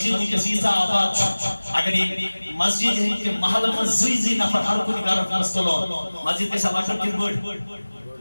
میں کسی سا آباد اگر یہ مسجد ہے کہ محل میں زی نفر ہر کوئی گارت مستلون مسجد کے سلاکر کن بڑھ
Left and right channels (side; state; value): both; inverted; correlation -1.00